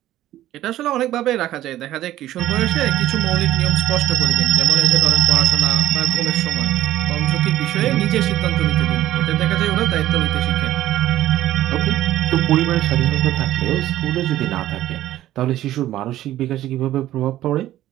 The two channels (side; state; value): left; quieter; 13.8 dB